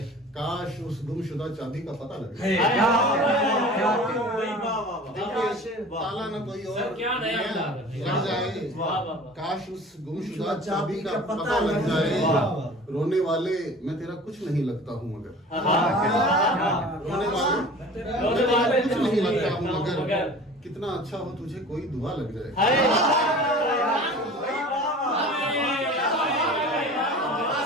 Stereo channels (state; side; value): normal; both; correlation 0.41